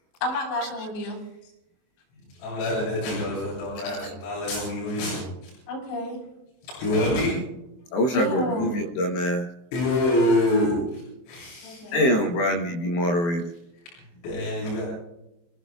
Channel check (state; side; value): late; right; 23 ms